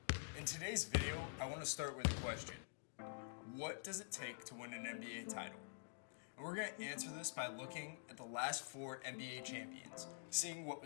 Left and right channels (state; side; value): silent; right; digital silence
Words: In today's video, I want to start with a question. What does it take to win an NBA title? And we're going to answer this by looking at the last 4 NBA champions, seeing what